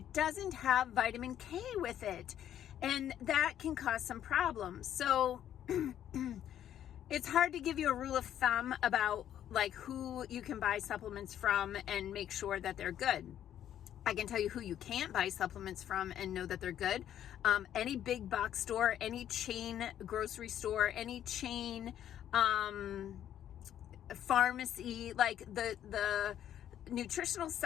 doesn't have vitamin K with it. And that can cause some problems. So it's hard to give you a rule of thumb about like who you can buy supplements from and make sure that they're good. I can tell you who you can't buy supplements from and know that they're good. Any big box store, any chain grocery store, any chain pharmacy, like the nutritional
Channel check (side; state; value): right; quieter; 10.7 dB